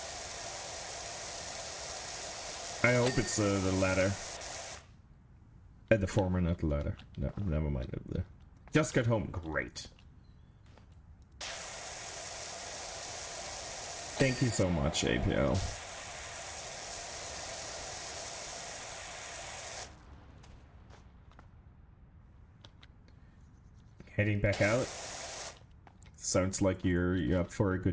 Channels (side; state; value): both; identical; correlation 1.00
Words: I hope it's the latter. The former, not the latter. No, never mind. Just got home. Great. Thank you so much, APL. Heading back out. Sounds like you're up for a